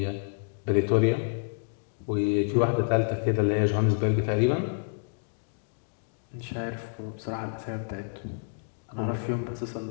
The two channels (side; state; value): right; silent; digital silence